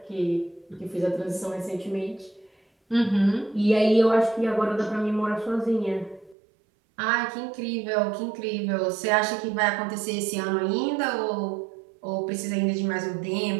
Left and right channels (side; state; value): left; drops out; at 6.4 s